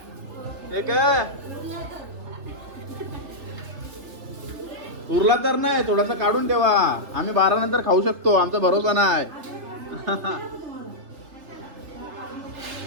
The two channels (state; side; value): late; left; 3.3 ms